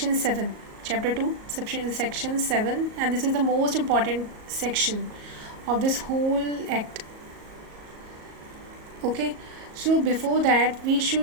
7, chapter 2, section 7, and this is the most important section of this whole act. Okay, so before that we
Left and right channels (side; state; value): left; late; 38 ms